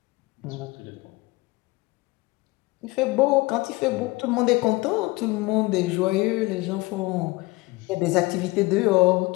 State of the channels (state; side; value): quieter; right; 22.7 dB